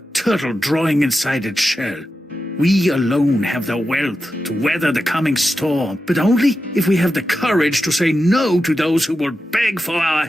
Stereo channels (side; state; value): both; normal; correlation 0.90